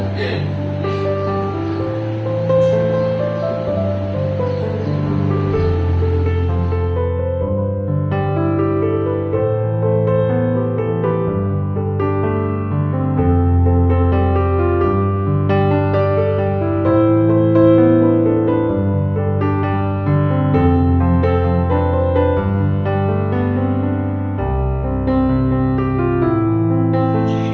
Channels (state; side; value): identical; both; correlation 1.00